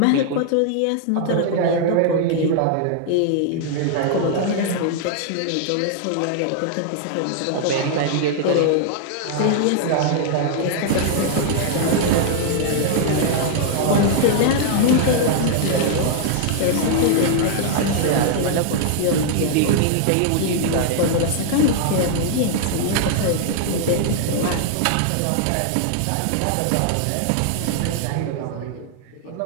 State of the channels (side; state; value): both; different; correlation -0.01